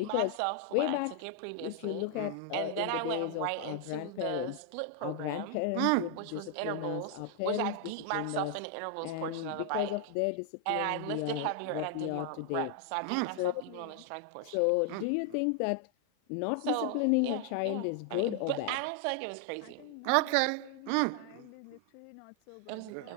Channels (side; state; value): both; different; correlation 0.00